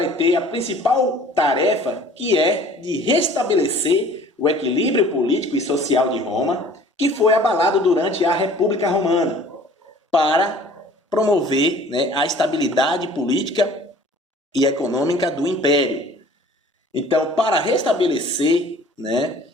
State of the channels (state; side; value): normal; both; correlation 0.50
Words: ter a principal tarefa, que é de restabelecer o equilíbrio político e social de Roma, que foi abalado durante a República Romana, para promover a estabilidade política e econômica do Império. Então, para restabelecer